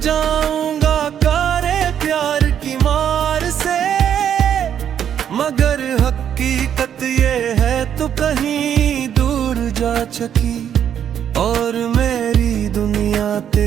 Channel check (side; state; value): left; quieter; 9.2 dB